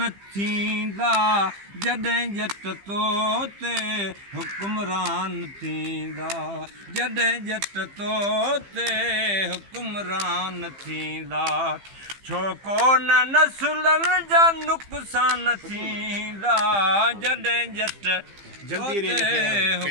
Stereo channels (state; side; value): late; left; 15 ms